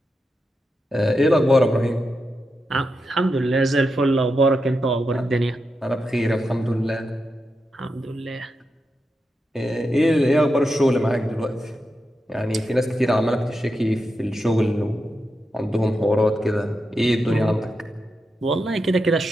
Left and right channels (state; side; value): normal; both; correlation 0.87